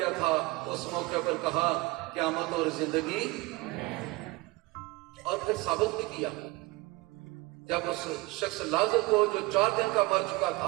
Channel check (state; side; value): quieter; left; 22.4 dB